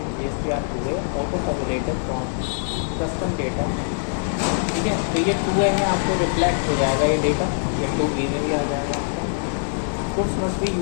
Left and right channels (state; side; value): silent; right; 63 dB below the other